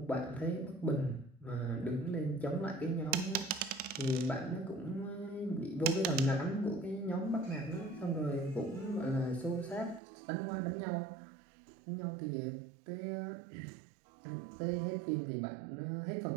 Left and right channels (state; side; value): drops out; left; at 10.0 s